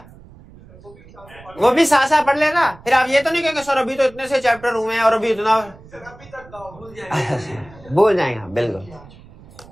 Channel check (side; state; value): right; noise; rumble, 22 dB below the sound